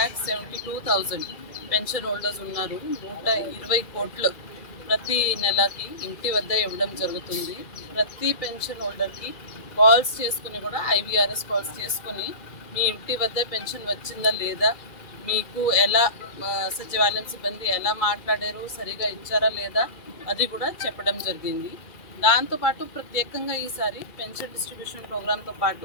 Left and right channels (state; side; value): late; right; 2.4 ms